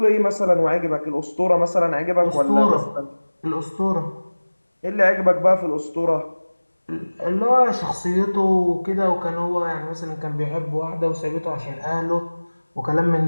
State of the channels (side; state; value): both; inverted; correlation -1.00